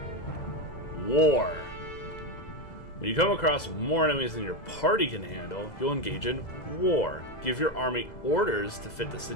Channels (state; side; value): late; right; 2.0 ms